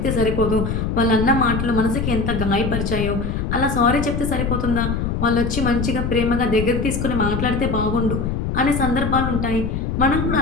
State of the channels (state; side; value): noise; left; rumble, 2 dB below the sound